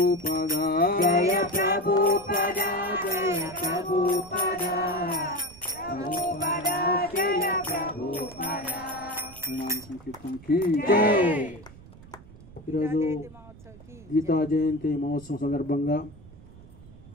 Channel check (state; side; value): noise; right; rumble, 20 dB below the sound